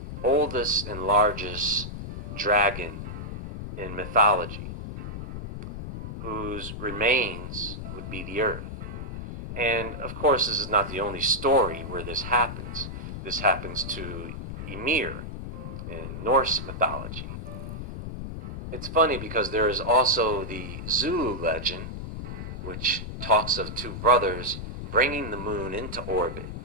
oldest and largest dragon in mythology, whose remains would be the earth. And of course, this is not the only story where this happens. This happens to Ymir in Norse mythology. It's funny because there is also the Zulu legend, which talks of two brothers bringing the moon into orbit,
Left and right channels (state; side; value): noise; left; rumble, 8 dB below the sound